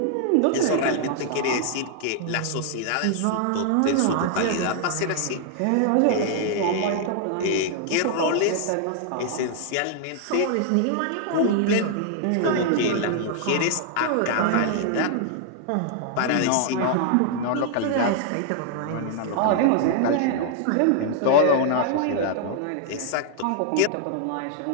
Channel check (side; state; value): both; different; correlation -0.01